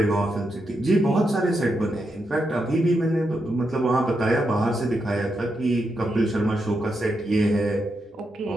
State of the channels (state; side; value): normal; both; correlation 0.84